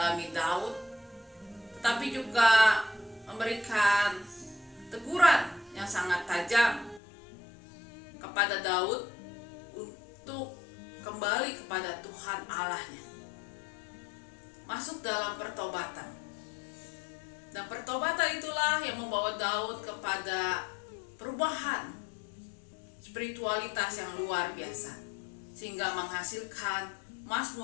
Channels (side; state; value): right; drops out; at 7.0 s